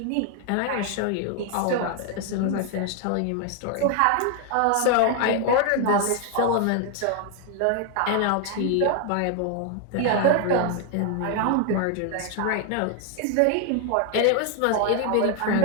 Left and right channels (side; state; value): both; different; correlation 0.01